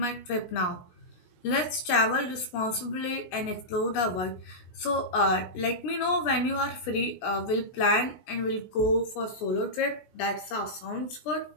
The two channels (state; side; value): late; right; 17 ms